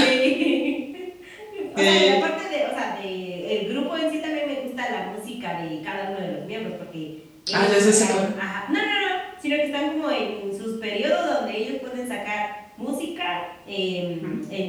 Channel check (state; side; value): identical; both; correlation 1.00